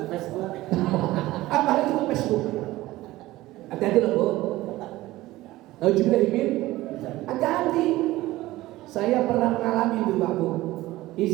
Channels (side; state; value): left; quieter; 17.4 dB